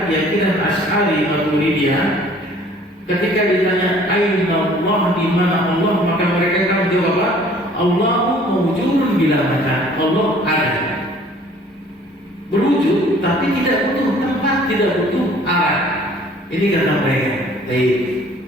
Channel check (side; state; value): both; normal; correlation 0.54